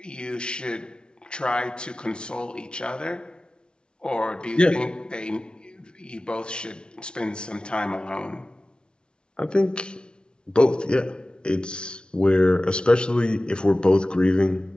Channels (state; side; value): late; right; 0.055 ms